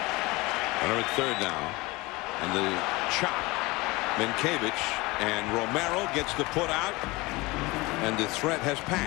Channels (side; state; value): right; quieter; 23.0 dB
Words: Runner at third now. And the chop. Minkiewicz, and Romero gets the put out, and the threat has